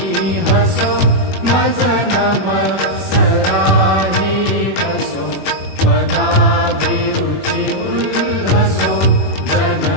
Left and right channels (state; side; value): late; right; 21 ms